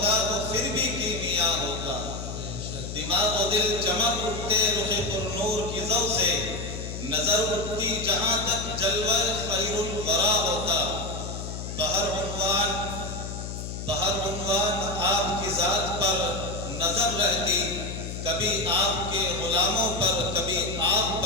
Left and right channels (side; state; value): left; noise; hum, 7 dB below the sound